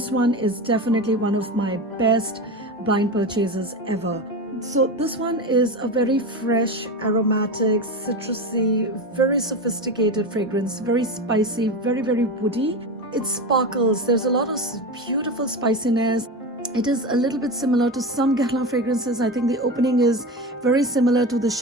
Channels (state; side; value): normal; both; correlation 0.23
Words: one is definitely one of my best blind purchases ever. So this one is a very fresh, aromatic, citrusy, very sophisticated fragrance, very spicy, very, very woody. It sparkles. There's a lot of beautiful spiciness. It is a little bit similar to some Guerlain fragrances. I think the opening is very similar to the